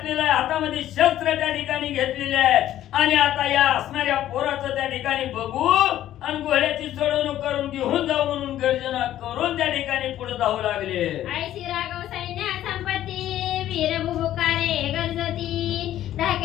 आहे, हातामध्ये शस्त्र त्या ठिकाणी घेतलेले आहेत. आणि आता या असणाऱ्या पोराचं त्या ठिकाणी बघू आणि घोड्याची चढवणूक करून घेऊन जाऊ म्हणून गर्जना करून त्या ठिकाणी पुढे जाऊ लागले. ऐशी राघव सैन्य संपत्ती वीर बुबुकारे गरजती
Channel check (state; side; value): quieter; right; 12.6 dB